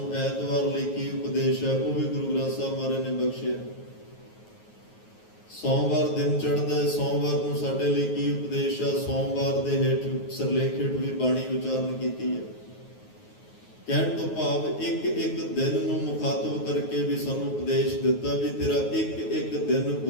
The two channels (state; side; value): late; right; 9.4 ms